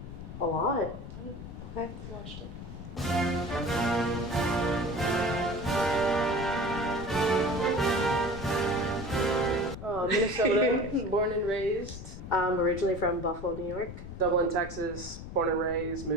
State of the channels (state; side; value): noise; left; rumble, 11 dB below the sound